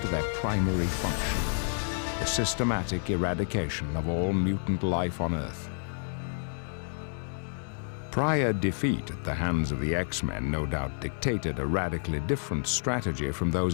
to their primary function, the systematic eradication of all mutant life on Earth. Prior defeat at the hands of the X-Men no doubt dictated a radically different strategy from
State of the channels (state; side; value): silent; right; 58 dB below the other